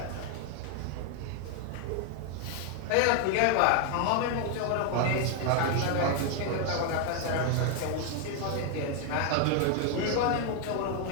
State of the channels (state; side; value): different; both; correlation 0.00